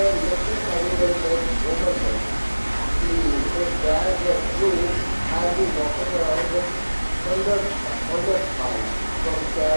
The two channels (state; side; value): inverted; both; correlation -1.00